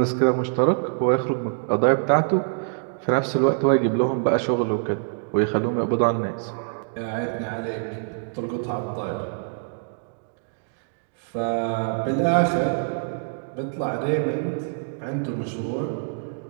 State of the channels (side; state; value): left; silent; digital silence